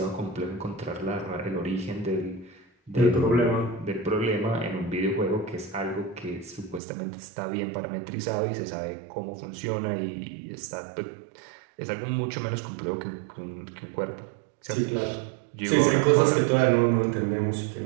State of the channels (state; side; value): drops out; left; at 6.8 s